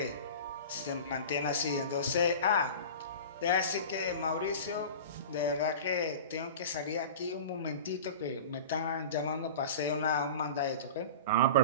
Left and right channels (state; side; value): inverted; both; correlation -0.34